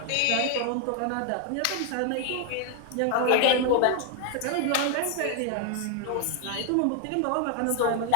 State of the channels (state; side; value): different; both; correlation 0.00